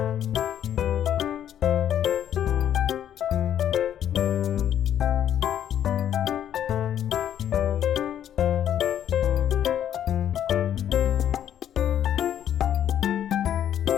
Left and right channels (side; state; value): right; quieter; 10.2 dB